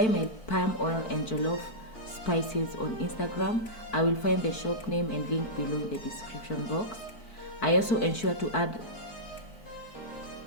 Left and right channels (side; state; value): right; late; 4.5 ms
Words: my palm oil and jollof spices on Instagram. I will find the shop name and link below in the description box. I also ensure to add